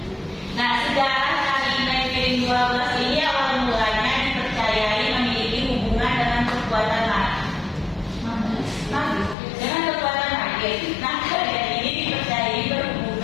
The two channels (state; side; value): drops out; right; at 9.3 s